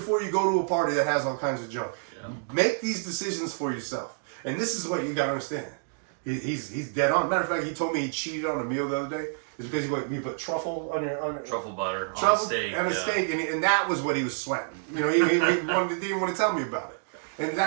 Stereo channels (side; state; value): left; silent; digital silence